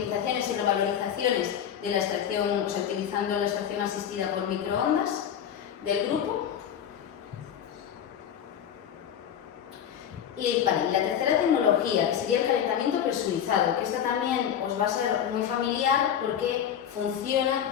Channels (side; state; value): right; quieter; 9.2 dB